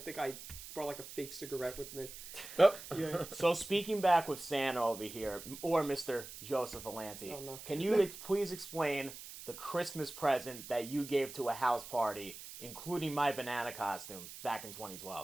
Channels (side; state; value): right; noise; hiss, 12 dB below the sound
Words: I brought like a fake cigarette with me. Oh. Yeah. So speaking back with Santa over here, or Mr. Joseph Alanti, Oh, no. can you please explain the Christmas present that you gave to a house party, including my banana costume, back in